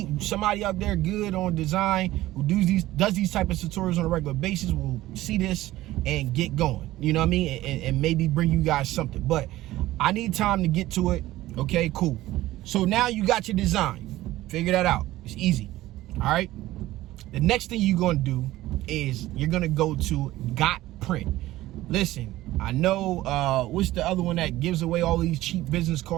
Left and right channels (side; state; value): left; quieter; 16.2 dB